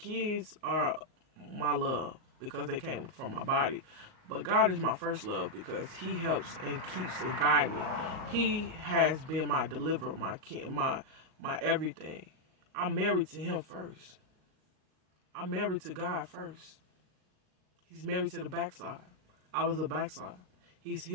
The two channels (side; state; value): left; late; 38 ms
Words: are my love because they came from my body. But God is my first love because He helps and keeps and guides me. He has been my deliverer, my everything. I'm married to Him first. I'm married to God first. He's married to the backside. I was a backside. He's